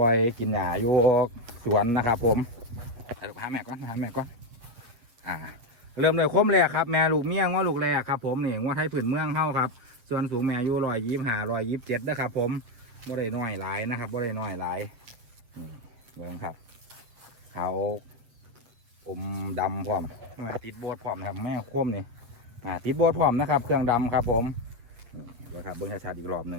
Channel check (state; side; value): late; left; 8.3 ms